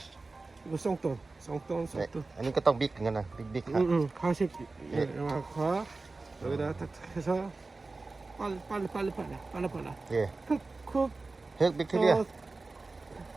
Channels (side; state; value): left; quieter; 3.6 dB